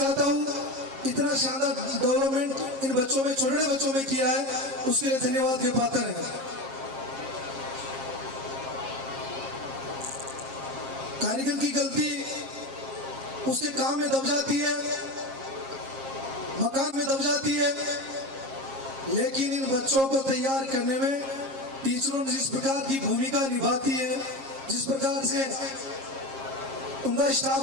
हूं। इतना शानदार डेवलपमेंट इन बच्चों में, छोटे बच्चों में किया है, उसके लिए धन्यवाद के पात्र है। कारीगर की गलती उसके काम में दब जाती है, मकान में दब जाती है, लेकिन इन बच्चों को तैयार करने में टीचरों ने जिस प्रकार की भूमिका निभाती है, जिस प्रकार से उनका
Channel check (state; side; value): late; left; 7.4 ms